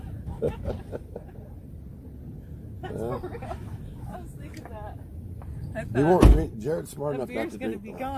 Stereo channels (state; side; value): identical; both; correlation 1.00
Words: That's for real. I was thinking that. I They thought won't drink. Jared's smart the enough not beer's to going to drink. be